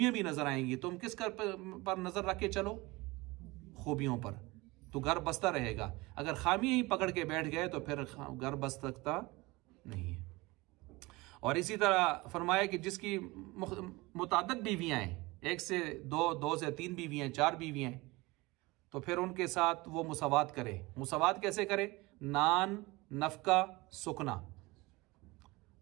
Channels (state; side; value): quieter; left; 22.5 dB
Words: भी नजर आएंगी। तुम किस पर नजर रख के चलो? खूबियों पर, तो घर बसता रहेगा। अगर खामियां ही पकड़ के बैठ गए तो फिर घर बस सकता नहीं है। और इसी तरह फरमाया कि जिसकी मुताद्दद बीवियां हैं, 1 से 2, 2 से 3 बीवियां, 4 बीवियां हैं, तो फिर उनके साथ वो मुसावात करे। मुसावात कैसे करे? नान, नफका, सुकना।